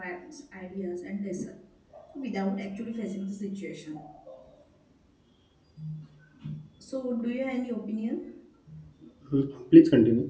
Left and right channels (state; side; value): identical; both; correlation 1.00